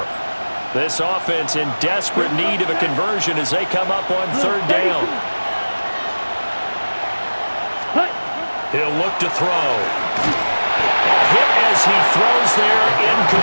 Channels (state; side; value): inverted; both; correlation -1.00